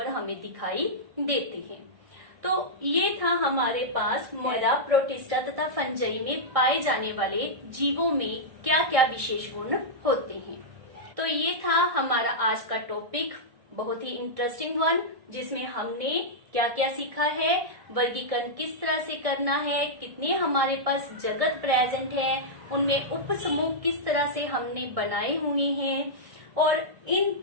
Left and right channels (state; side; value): late; left; 1.6 ms